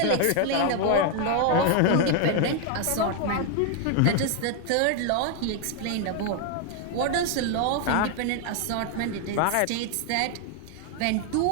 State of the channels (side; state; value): both; different; correlation 0.00